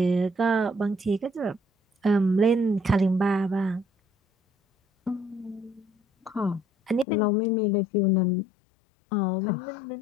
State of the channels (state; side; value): drops out; right; at 7.1 s